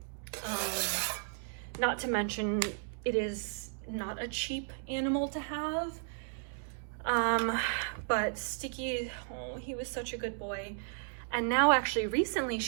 Not to mention, it is not a cheap animal to have. But Sticky, oh, he was such a good boy. And now actually recently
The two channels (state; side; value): silent; left; digital silence